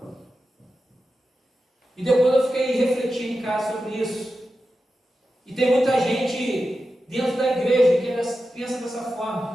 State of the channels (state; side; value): normal; both; correlation 0.91